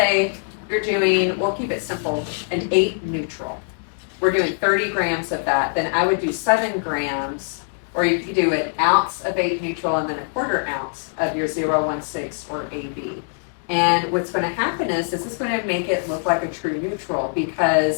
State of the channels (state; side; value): silent; right; digital silence